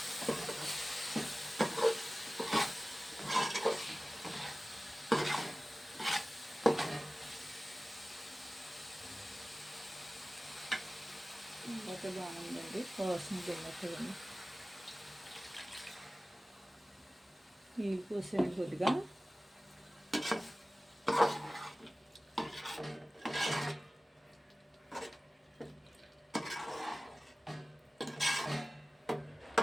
ఇంకా బాగుందండి. వాసన తిన్నట్టుగా నీళ్ళు పోసాను కొద్దిగా.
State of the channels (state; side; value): normal; both; correlation 0.97